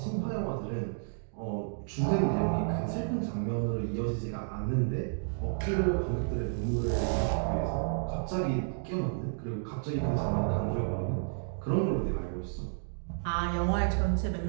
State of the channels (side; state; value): left; silent; digital silence